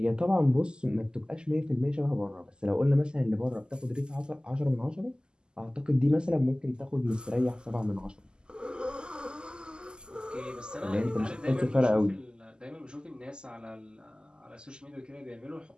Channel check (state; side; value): late; left; 0.047 ms